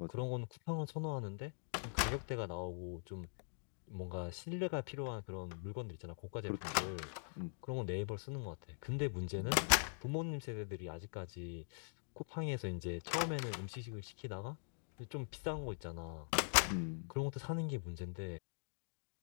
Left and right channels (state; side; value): silent; right; digital silence